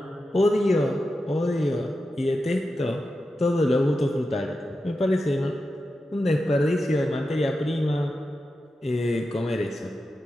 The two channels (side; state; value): both; normal; correlation 0.90